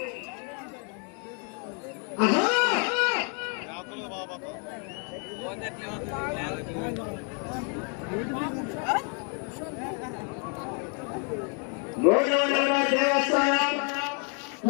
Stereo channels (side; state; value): right; quieter; 38.9 dB